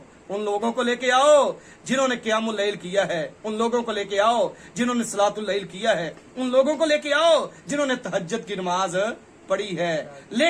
ان لوگوں کو لے کے آؤ جنہوں نے قیام اللیل کیا ہے, ان لوگوں کو لے کے آؤ جنہوں نے صلاۃ اللیل کیا ہے, ان لوگوں کو لے کے آؤ جنہوں نے تہجد کی نماز پڑھی ہے, لے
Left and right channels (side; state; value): both; identical; correlation 1.00